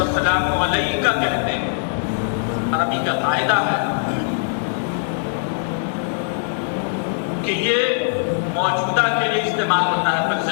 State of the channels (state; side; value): silent; right; digital silence